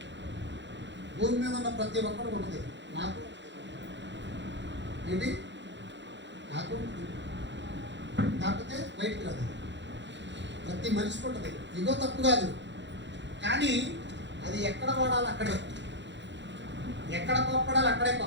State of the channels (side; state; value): left; late; 0.52 ms